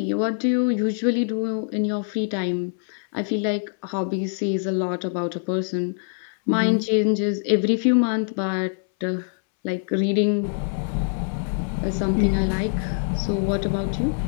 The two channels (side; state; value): right; silent; 63 dB below the other